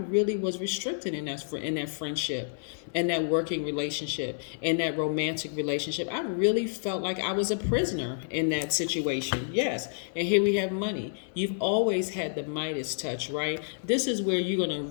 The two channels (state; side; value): silent; right; digital silence